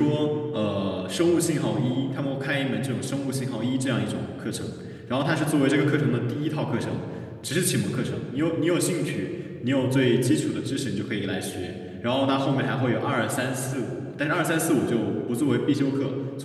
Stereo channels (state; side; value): identical; both; correlation 1.00